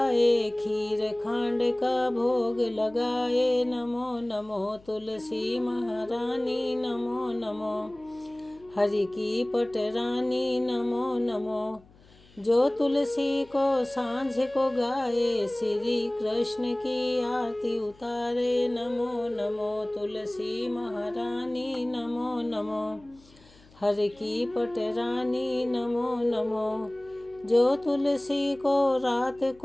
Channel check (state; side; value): noise; left; hum, 27 dB below the sound